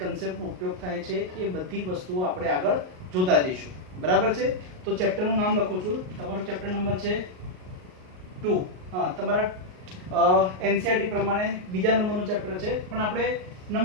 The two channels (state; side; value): late; left; 38 ms